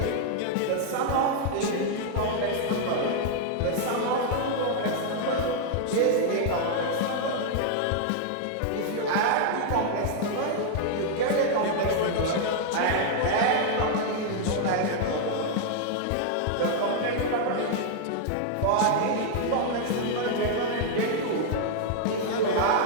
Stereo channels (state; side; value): different; both; correlation 0.00